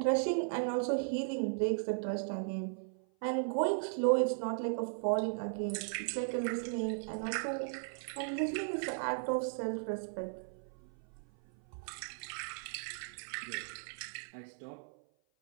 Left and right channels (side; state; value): left; silent; 53 dB below the other